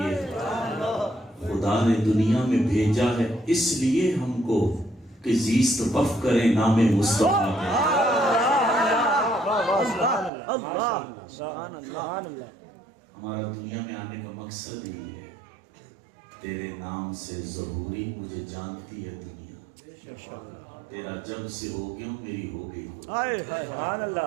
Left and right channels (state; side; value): drops out; left; at 10.3 s